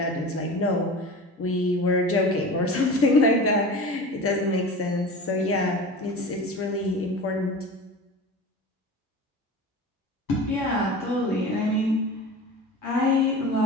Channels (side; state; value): both; normal; correlation 0.33